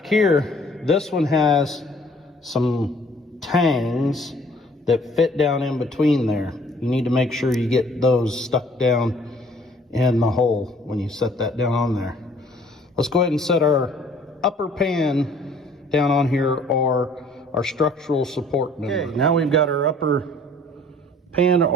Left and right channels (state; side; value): normal; both; correlation 0.56